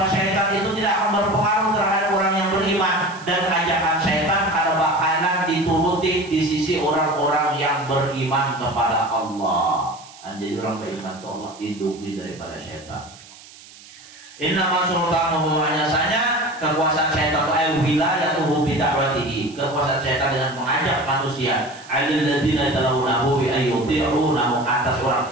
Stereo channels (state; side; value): noise; right; hiss, 21 dB below the sound